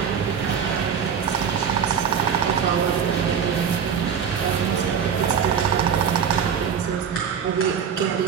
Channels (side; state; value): left; quieter; 7.4 dB